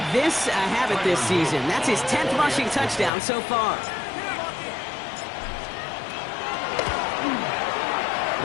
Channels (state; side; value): drops out; right; at 3.1 s